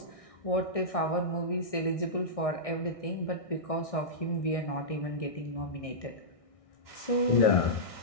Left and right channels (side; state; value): right; late; 1.6 ms